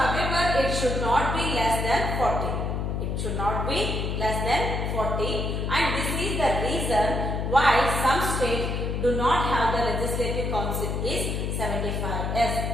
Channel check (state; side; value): noise; left; hum, 1 dB below the sound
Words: however it should not be less than 40. It should not be less than 40, and this is the reason why some states do not have the Legislative Council is 75. Yes,